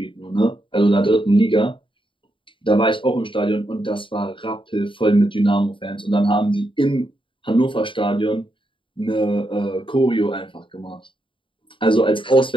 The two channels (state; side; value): late; right; 0.25 ms